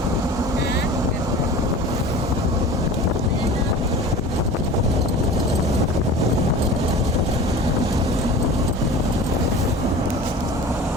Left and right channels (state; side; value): normal; both; correlation 0.38